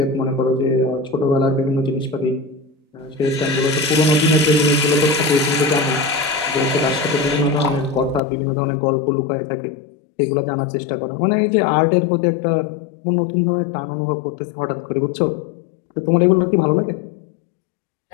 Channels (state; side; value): drops out; right; at 8.2 s